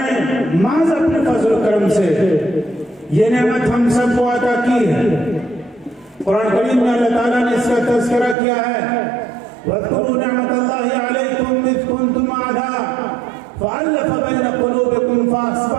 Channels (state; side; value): drops out; left; at 8.3 s